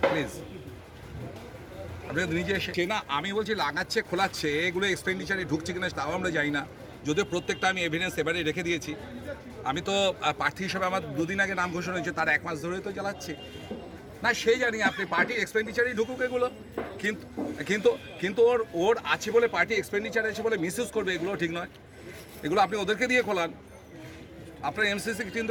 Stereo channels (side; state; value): both; identical; correlation 1.00